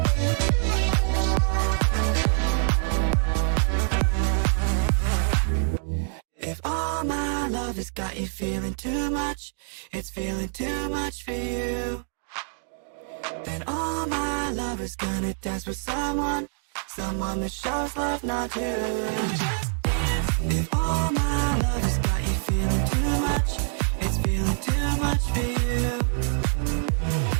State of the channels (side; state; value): left; silent; 61 dB below the other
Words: If all my love has got you feeling too much, it's feeling too much for you, then all my love is gonna dance with someone that shows love, not you. If all my love has got you feeling too much, it's feeling too much for you,